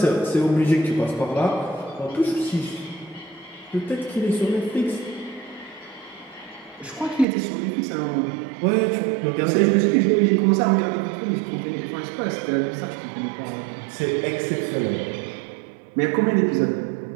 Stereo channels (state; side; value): drops out; left; at 7.2 s